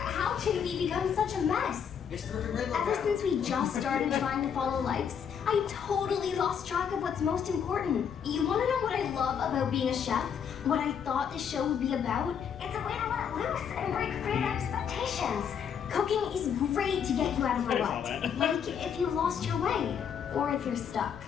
can we become such a mess? Ever since we just started trying to follow likes, I totally lost track of what's most important. You want to know what I love about being a chef? What I thought the show would be about? It's a way to let loose and break free of expectations. Cooking is great to get you out of a rut. Like if you lost your way, or if you're stuck.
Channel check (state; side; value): quieter; right; 7.7 dB